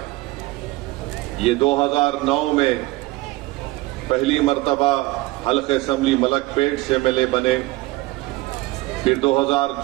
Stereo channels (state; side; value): quieter; left; 20.5 dB